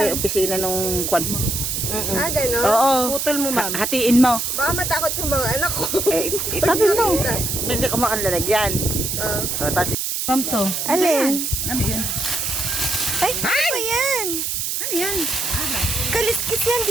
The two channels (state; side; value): noise; right; hiss, 1 dB below the sound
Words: opisina nung kwan mo. gano'n. Oo. Putol mo, ma'am. Hatiin mo. Baka matakot yung mga anak ko. Itabi mo. Hindi ko makalalagyan. Tapos, Ma'am to. Alin? ano yun? Ay, ano ba yan? Ano yan? Kaliskis yan,